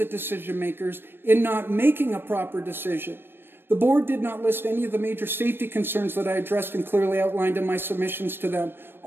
decision makers in not making a proper decision. The board did not list any of the major safety concerns that I addressed and clearly outlined in my submissions to them,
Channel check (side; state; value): left; late; 0.10 ms